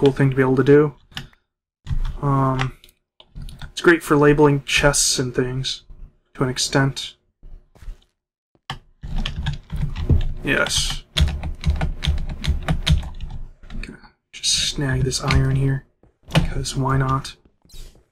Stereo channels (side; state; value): both; identical; correlation 1.00